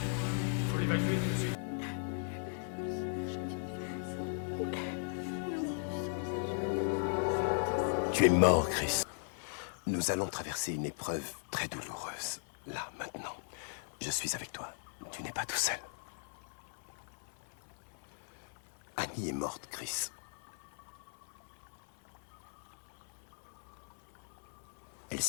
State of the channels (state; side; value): silent; right; 53 dB below the other